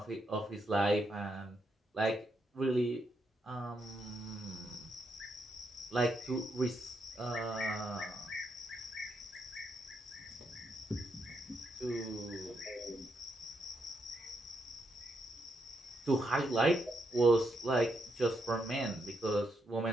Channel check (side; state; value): both; normal; correlation 0.80